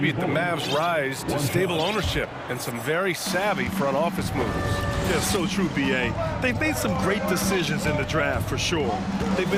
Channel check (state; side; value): identical; both; correlation 1.00